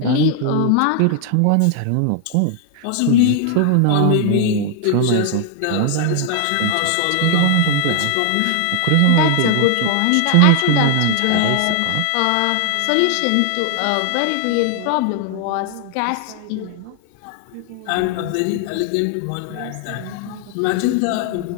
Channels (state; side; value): different; both; correlation 0.00